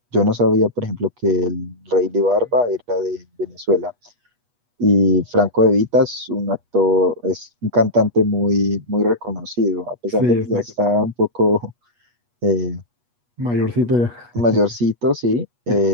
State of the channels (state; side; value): late; left; 8.3 ms